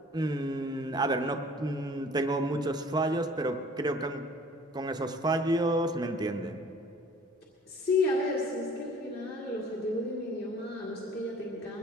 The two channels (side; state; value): both; normal; correlation 0.51